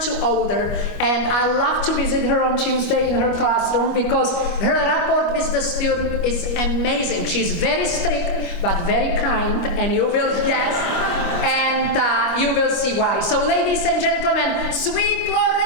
to older. And I love to visit her on Tuesday in her classroom, because her rapport with the student is amazing. She's very strict, but very kind, and you will, yes, and you will see why. So ladies and gentlemen, sweet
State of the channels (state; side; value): late; right; 25 ms